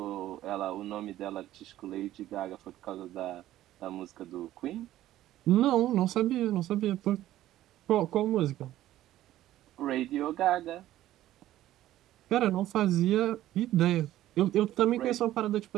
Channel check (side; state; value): left; quieter; 13.9 dB